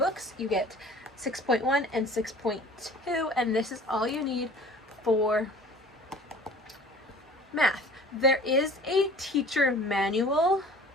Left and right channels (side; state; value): both; normal; correlation 0.46